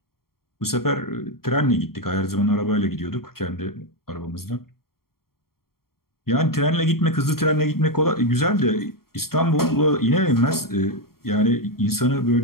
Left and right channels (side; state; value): right; late; 0.93 ms